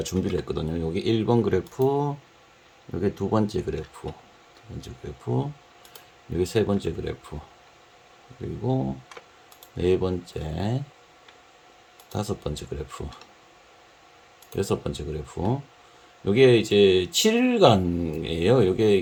준비를 했거든요. 여기 1번 그래프, 여기 두 번째 그래프, 여기 세 번째 그래프, 그리고 네 번째, 다섯 번째 그래프, 여섯 번째 그래프. 요게 이제 7일간이에요.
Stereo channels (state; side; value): identical; both; correlation 1.00